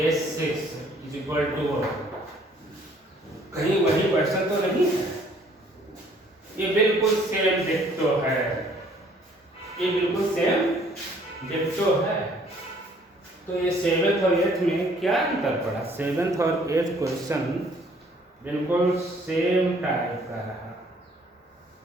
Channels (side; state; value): both; normal; correlation 0.60